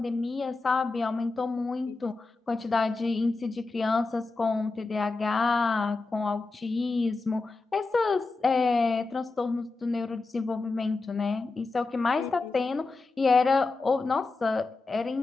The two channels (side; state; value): right; quieter; 3.7 dB